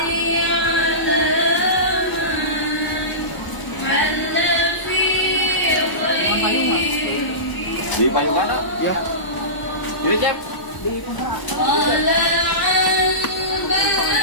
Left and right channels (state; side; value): late; right; 1.0 ms